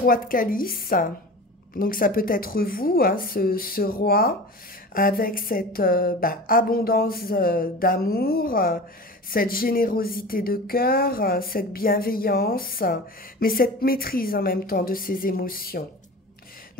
de calice. Donc, ça peut être vous, hein, ce roi, avec cette abondance d'amour, cette générosité de cœur, cette bienveillance, mais cette maîtrise en même temps de ses émotions.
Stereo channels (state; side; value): normal; both; correlation 0.34